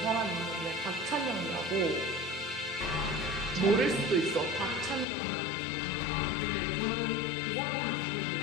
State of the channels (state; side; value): drops out; right; at 5.1 s